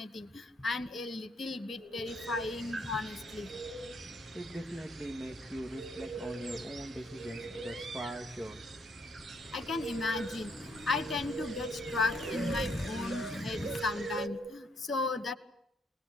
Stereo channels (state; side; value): normal; both; correlation 0.71